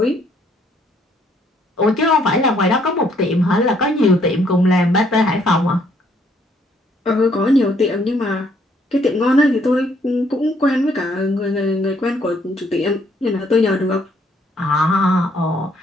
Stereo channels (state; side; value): normal; both; correlation 0.67